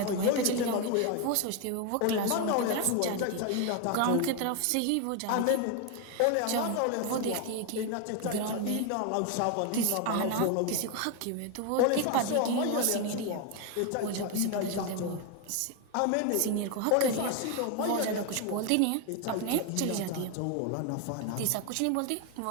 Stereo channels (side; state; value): both; different; correlation 0.01